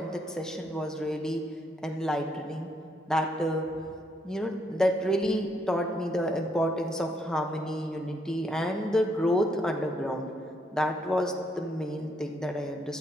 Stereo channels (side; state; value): both; normal; correlation 0.73